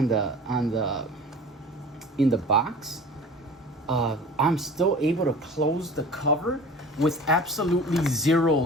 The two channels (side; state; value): both; normal; correlation 0.41